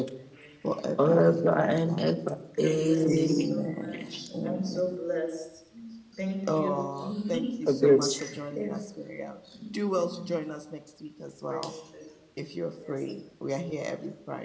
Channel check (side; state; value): both; identical; correlation 1.00